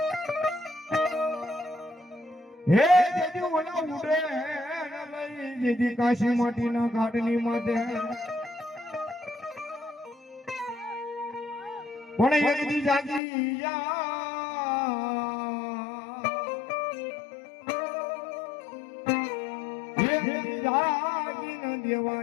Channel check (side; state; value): right; drops out; at 13.2 s